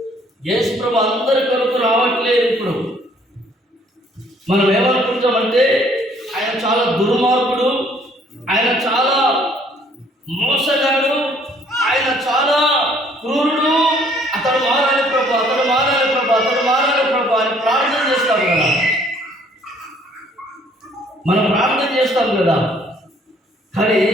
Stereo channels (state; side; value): normal; both; correlation 0.61